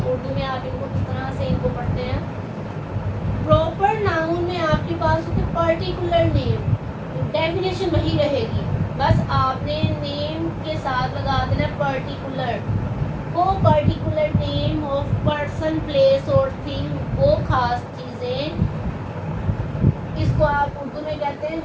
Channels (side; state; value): both; identical; correlation 1.00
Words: پرٹیکولر نیم، ڈیفینیشن وہی رہے گی، بس آپ نے نیم کے ساتھ لگا دینا پرٹیکولر. وہ particular name of person place اور تھنگ، وہ خاص چیزیں، اس کو آپ اردو میں کہتے ہیں